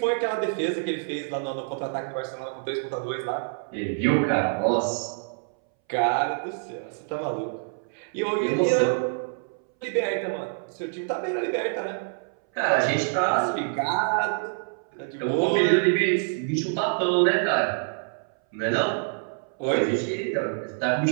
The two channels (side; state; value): left; silent; 61 dB below the other